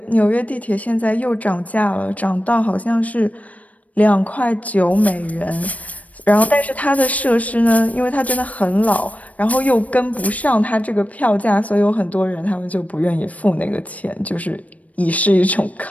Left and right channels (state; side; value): late; right; 0.068 ms